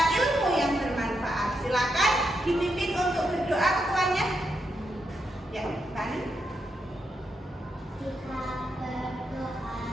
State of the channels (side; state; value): both; normal; correlation 0.82